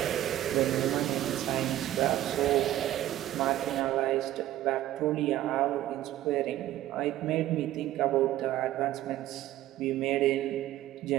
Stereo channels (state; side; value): quieter; left; 13.8 dB